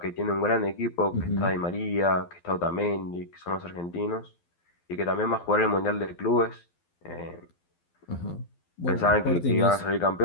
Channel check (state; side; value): late; right; 12 ms